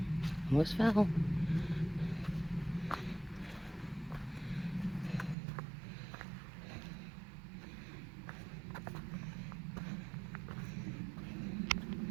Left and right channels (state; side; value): drops out; left; at 5.4 s